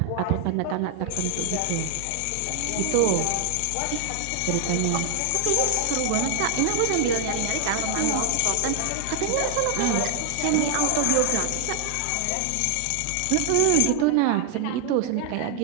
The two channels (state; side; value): different; both; correlation 0.00